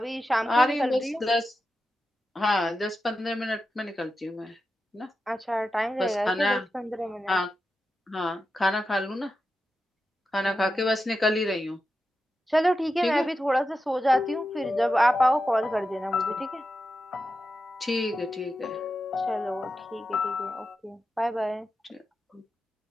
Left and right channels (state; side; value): normal; both; correlation 0.90